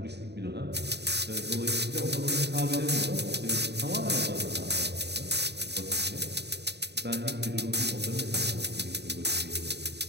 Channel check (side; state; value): left; late; 0.49 ms